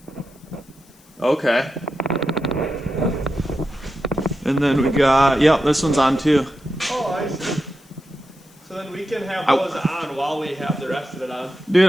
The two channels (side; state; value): left; noise; hiss, 28 dB below the sound